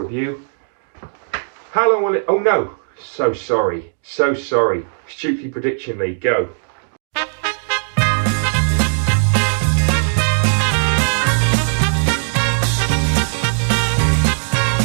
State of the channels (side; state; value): left; silent; digital silence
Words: of you. How long will it... Oh, no. So sorry. So sorry. Stukeley Prediction League, go.